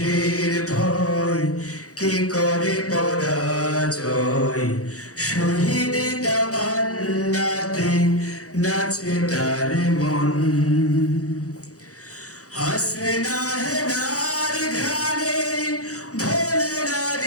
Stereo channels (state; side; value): late; right; 0.66 ms